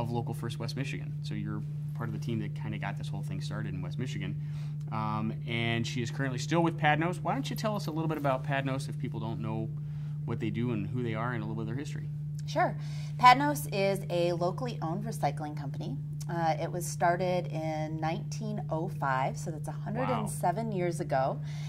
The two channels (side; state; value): both; identical; correlation 1.00